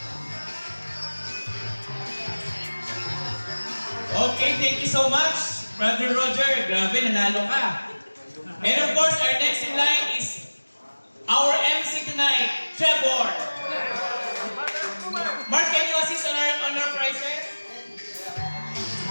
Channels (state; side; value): inverted; both; correlation -1.00